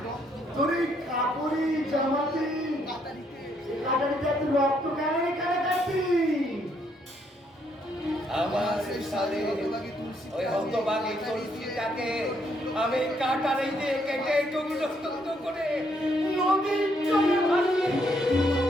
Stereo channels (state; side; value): normal; both; correlation 0.72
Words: রক্ত কেন এখানে কাটছি? আমার সাথে ওই হতভাগী তুলসীটাকে আমি কাটারে দিয়ে কেটে টুকরো টুকরো করে নদীর জলে ভাসিয়ে